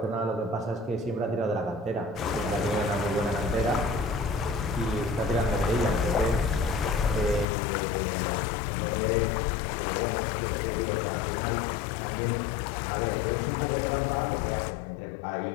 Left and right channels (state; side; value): drops out; right; at 7.5 s